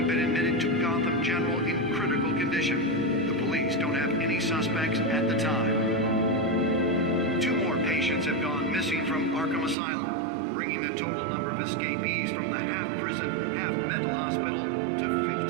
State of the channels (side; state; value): left; drops out; at 9.8 s